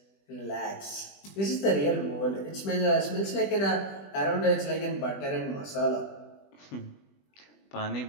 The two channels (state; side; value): late; right; 20 ms